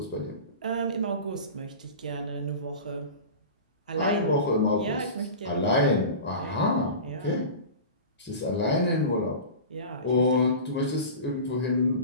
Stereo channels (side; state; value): both; inverted; correlation -0.32